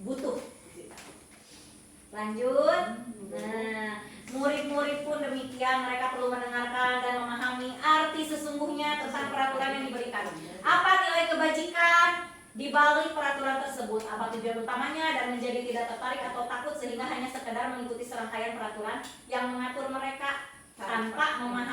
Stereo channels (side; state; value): both; identical; correlation 1.00